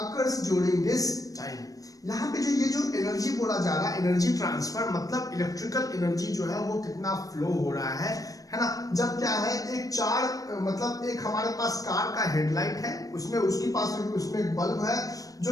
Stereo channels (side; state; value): right; late; 0.17 ms